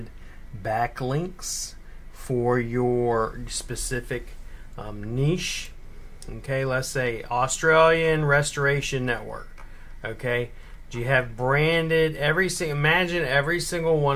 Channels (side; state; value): both; identical; correlation 1.00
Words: backlinks for your specific niche? Okay, let's say Australian Restoration Network. Okay, do you have branded imagine every single